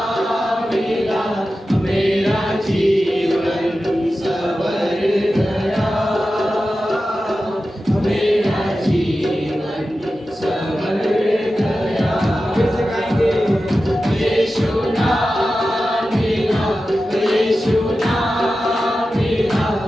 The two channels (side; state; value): both; normal; correlation 0.93